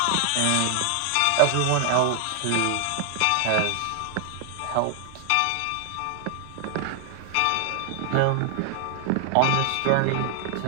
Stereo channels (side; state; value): both; different; correlation 0.00